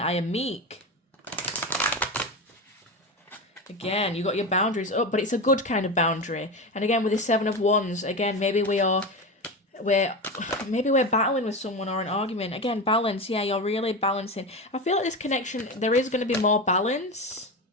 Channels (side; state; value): both; normal; correlation 0.21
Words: I am meek. Again, you got your boundaries up, but it's a good kind of boundary. And again, with the 7 of Wands, again, maybe we're battling with someone or an argument. Again, balance. Yeah, you're really balancing. I feel like this connection, there is going to be more balance.